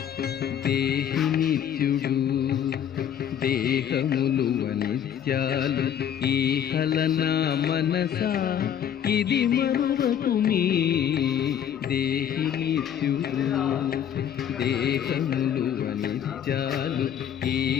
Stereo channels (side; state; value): right; quieter; 9.3 dB